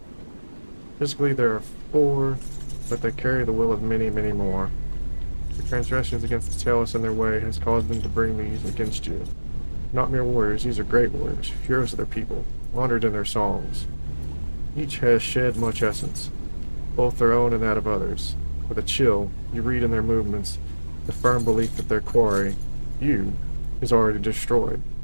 Physically there are 4, but they carry the will of many, many more. Your transgressions against the Talos and their way has caused them to bring these against you. Not mere warriors, these are great warriors, heroes of their people, honored in their songs. Each has shed much essence, both their own and that of others. With a chill, you read in their movements the firm belief that their quarry, you, is already destroyed.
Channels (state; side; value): inverted; both; correlation -1.00